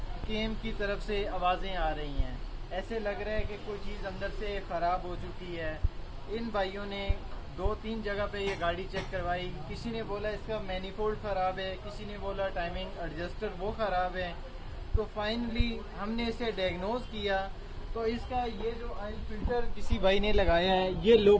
کیم کی طرف سے آوازیں آ رہی ہیں. ایسے لگ رہا ہے کہ کوئی چیز اندر سے خراب ہو چکی ہے. ان بھائیوں نے 2-3 جگہ پہ یہ گاڑی چیک کروائی. کسی نے بولا اس کا مینیفولڈ خراب ہے, کسی نے بولا ٹائمنگ ایڈجسٹر وہ خراب ہے. تو فائنلی ہم نے اسے ڈائگنوز کیا. تو اس کا یہ جو آئل فلٹر کسی بھائی نے لگایا ہے یہ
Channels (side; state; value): both; identical; correlation 1.00